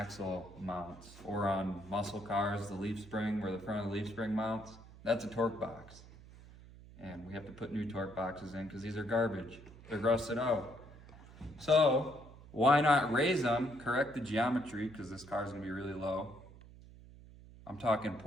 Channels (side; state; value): right; noise; hum, 19 dB below the sound